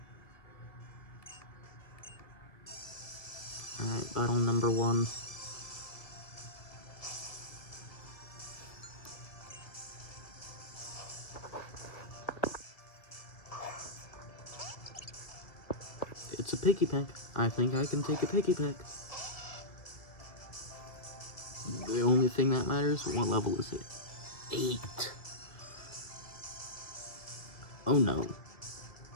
Alright, battle number 1. It's a Piggy Peck. I think I can take a Piggy Peck. The only thing that matters, what level is it? 8. Oh no.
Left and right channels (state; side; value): late; right; 1.6 ms